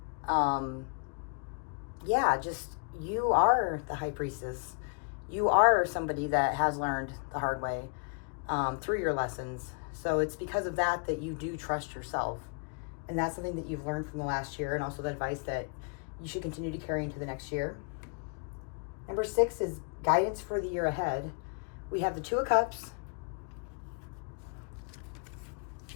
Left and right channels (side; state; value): right; quieter; 38.0 dB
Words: You are the High Priestess. You are somebody that has learned the hard way through your lessons. So it's because of that you do trust yourself. And that's something that you've learned from the last year, and also the advice that you should continue to carry into the next year. Number 6 is guidance for the year ahead. We have the 2 of Cups,